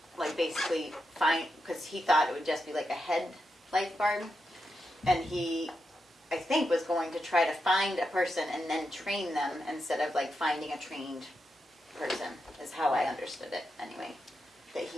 like, basically because he thought it would just be like a head lifeguard, and he, I think, was going to try to find a person and then train them instead of like finding a trained person, is how I understood it anyway. That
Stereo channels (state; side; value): normal; both; correlation 0.86